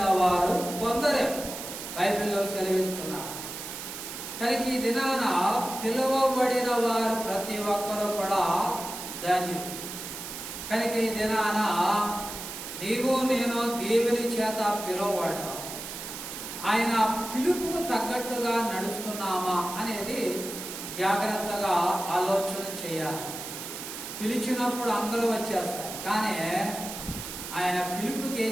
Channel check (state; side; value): noise; right; hiss, 8 dB below the sound